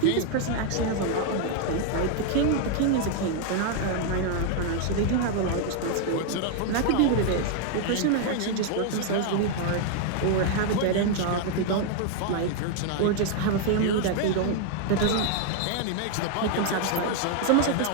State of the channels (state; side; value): different; both; correlation 0.00